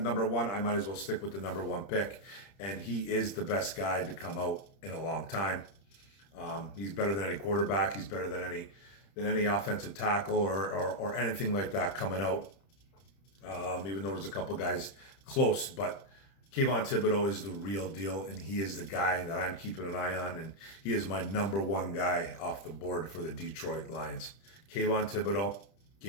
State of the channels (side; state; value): right; late; 30 ms